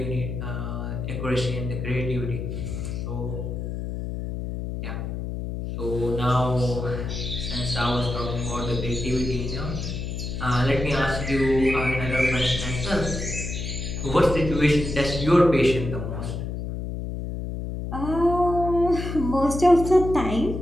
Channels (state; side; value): noise; left; hum, 5 dB below the sound